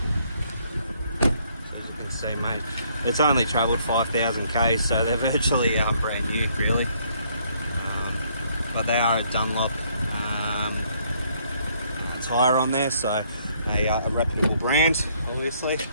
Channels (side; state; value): both; inverted; correlation -0.67